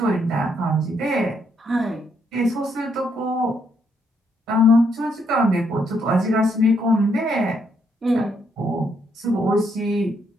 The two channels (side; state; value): both; normal; correlation 0.74